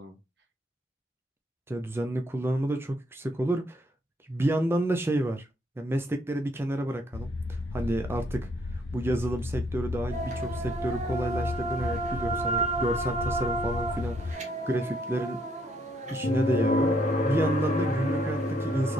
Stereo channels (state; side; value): normal; both; correlation 0.70